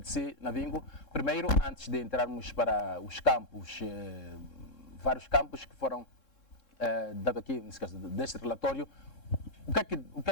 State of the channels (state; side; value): late; right; 3.7 ms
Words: de si, Navingo, primeiro, antes de entrarmos para os campos, vários campos que foram dados aqui, nesse caso, deste relatório, o que